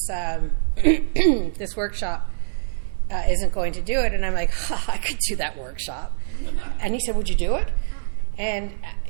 this workshop isn't going to do it. And I'm like, I could do that workshop. And he said, would you do it? And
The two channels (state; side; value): silent; left; 56 dB below the other